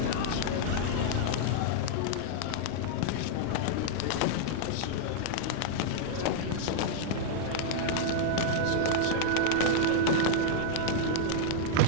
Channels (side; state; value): both; different; correlation -0.02